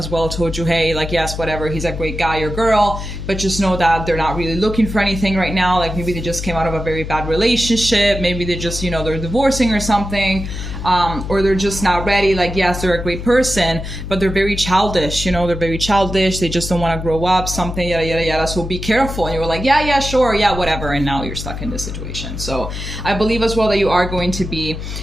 well told you, hey, like, yes, whatever, he's a great guy or girl, but just know that they're not really looking for anything right now. Like, maybe they just came out of a very bad relationship. Maybe they just, you know, they're divorcing or something. Or they're just not ready. Like, yes, they're a great person, but they're very childish, you know, they're very childish. They just don't want to grow up, something, yada, yada, yada. So be careful. And you were like, yeah, sure. Yeah, whatever. And now you're stuck in this situation. So I believe as well that you are going to be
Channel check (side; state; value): left; noise; hum, 7 dB below the sound